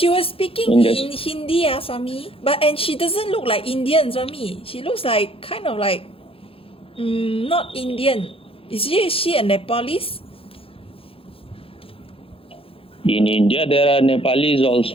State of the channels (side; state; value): right; late; 0.27 ms